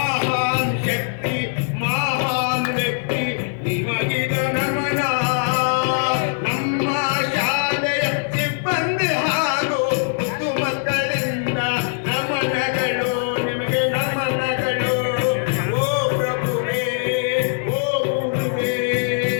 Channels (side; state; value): right; silent; digital silence